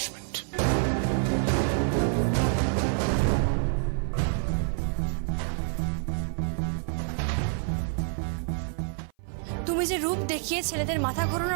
তুমি যে রূপ দেখিয়ে ছেলেদের মাথা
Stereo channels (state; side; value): silent; left; 55 dB below the other